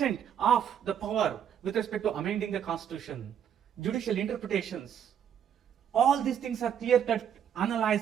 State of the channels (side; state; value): left; quieter; 8.9 dB